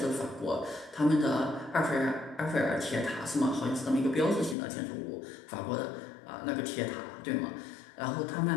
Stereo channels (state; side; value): drops out; right; at 4.5 s